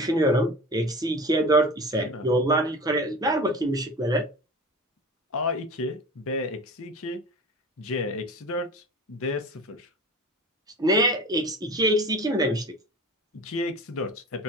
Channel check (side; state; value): both; normal; correlation 0.35